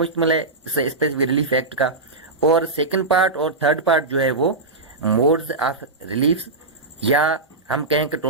है स्पेसिफिक रिलीफ एक्ट का, और सेकंड पार्ट और थर्ड पार्ट जो है वो मोड्स ऑफ रिलीफ, या हम कहें कि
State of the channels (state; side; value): quieter; left; 3.3 dB